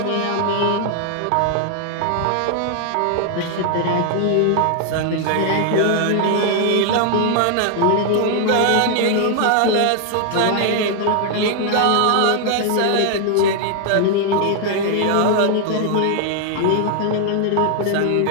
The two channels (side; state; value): both; different; correlation 0.00